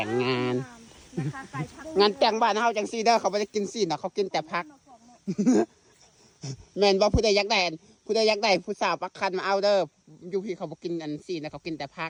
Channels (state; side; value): identical; both; correlation 1.00